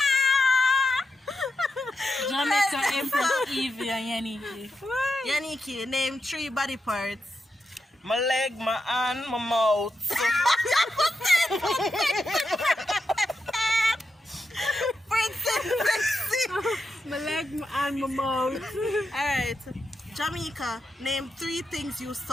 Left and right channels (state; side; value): normal; both; correlation 0.85